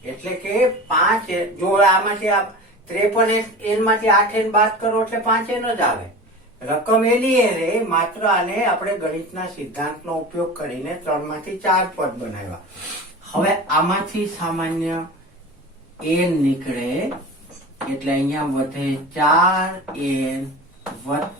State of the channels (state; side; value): normal; both; correlation 0.33